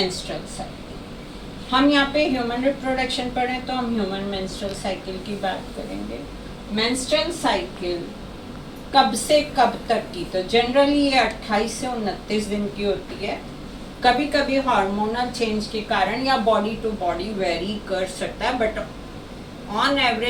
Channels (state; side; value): identical; both; correlation 1.00